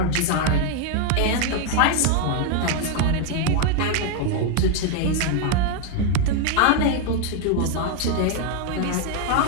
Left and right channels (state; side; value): different; both; correlation 0.00